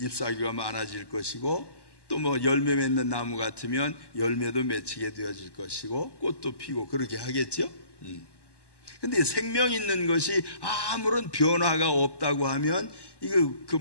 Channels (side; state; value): right; late; 1.1 ms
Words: 잎사귀가 많아질 것이고, 또 뭐 열매 맺는 나무 같으면 열매도 맺히게 되어질 것이고 꽃도 피고 그렇게 하겠죠. 근데 생명 있는 것이 아무런 변화가 없다고 하면 이거 그